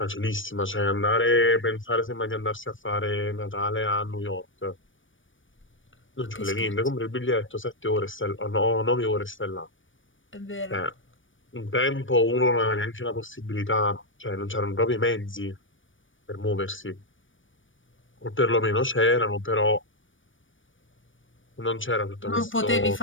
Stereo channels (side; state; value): right; late; 0.56 ms